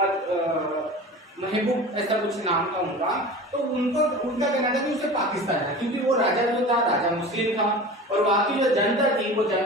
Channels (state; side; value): normal; both; correlation 0.35